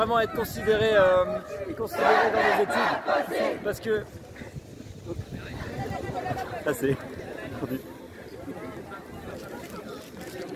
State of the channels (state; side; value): identical; both; correlation 1.00